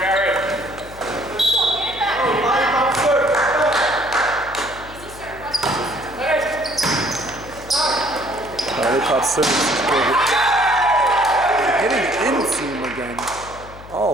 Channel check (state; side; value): noise; left; hum, 17 dB below the sound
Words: Getting in-seam again